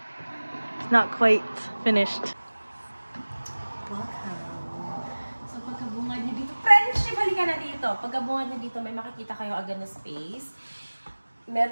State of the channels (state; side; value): inverted; both; correlation -1.00